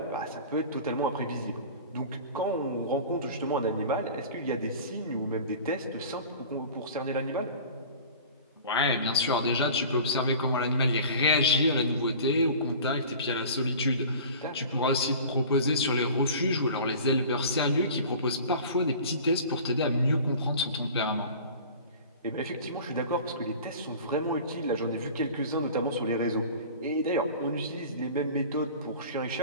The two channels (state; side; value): inverted; both; correlation -0.40